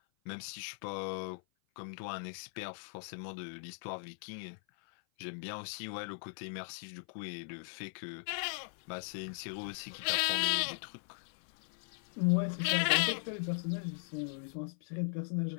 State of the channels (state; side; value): silent; right; 52 dB below the other